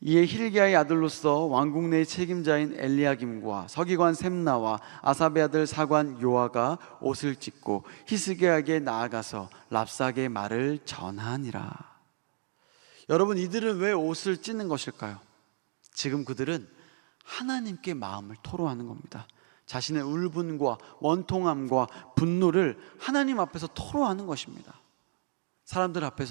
이에 힐기야의 아들로서 왕궁 내의 책임자인 엘리야김과 서기관 셈나와 아삽의 아들 사관 요아가 옷을 찢고 히스기야에게 나아가서 랍사게의 말을 전하니라. 여러분, 이들은 왜 옷을 찢는 것일까요? 지금 그들은 하나님께 마음을 토로하는 겁니다. 자신의 울분과 원통함과 분노를 하나님 앞에서 토로하는 것입니다. 사람들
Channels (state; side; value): silent; left; digital silence